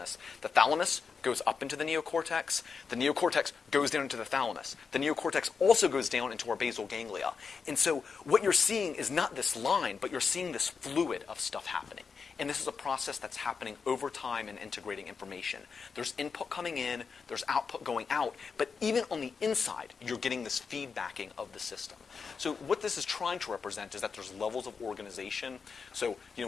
The thalamus goes up into the neocortex. The neocortex goes down into the thalamus. The neocortex also goes down into our basal ganglia. And so what you're seeing is not this line, but you're seeing this fluid of stuff happening. And this is a process that's happening over time and integrating information. There's input coming in, there's output going out, but even on the inside, you're getting this feedbacking of the system. So what this is trying to represent is that there's levels of organization. So,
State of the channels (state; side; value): quieter; right; 5.5 dB